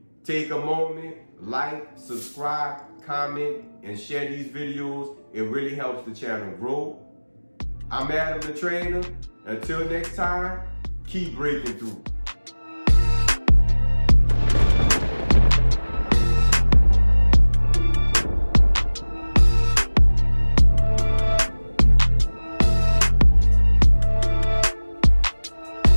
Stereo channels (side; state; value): both; inverted; correlation -1.00